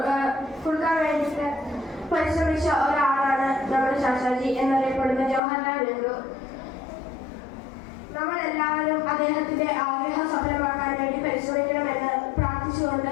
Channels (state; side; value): drops out; right; at 5.4 s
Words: വേണ്ടിയിട്ട് പരിശ്രമിച്ച ഒരാളാണ് നമ്മുടെ ചാച്ചാജി എന്നറിയപ്പെടുന്ന ജവഹർലാൽ നെഹ്റു. നമ്മളെല്ലാവരും അദ്ദേഹത്തിന്റെ ആഗ്രഹം സഫലമാക്കാൻ വേണ്ടി പരിശ്രമിക്കണമെന്ന്